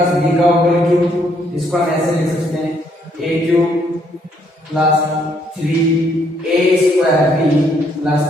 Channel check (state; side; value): normal; both; correlation 0.70